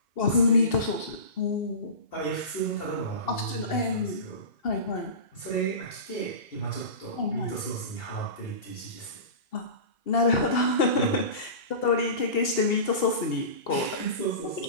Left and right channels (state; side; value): late; right; 2.7 ms